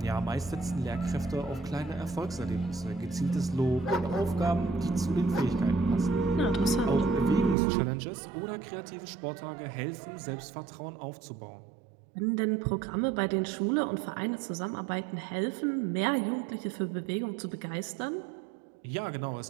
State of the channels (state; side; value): drops out; left; at 7.6 s